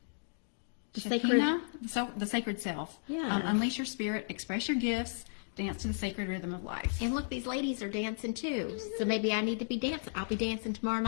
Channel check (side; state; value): right; silent; digital silence